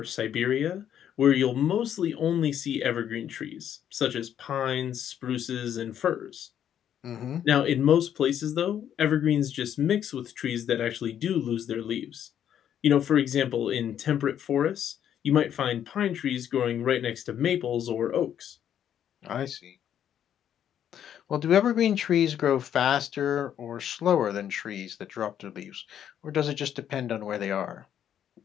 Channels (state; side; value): quieter; right; 9.8 dB